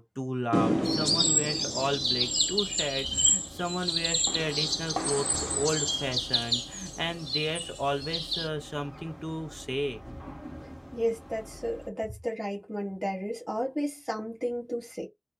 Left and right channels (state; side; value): identical; both; correlation 1.00